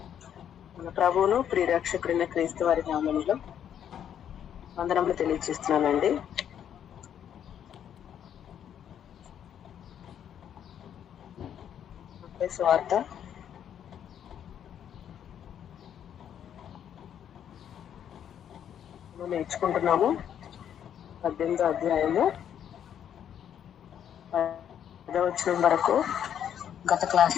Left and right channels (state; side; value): quieter; right; 9.3 dB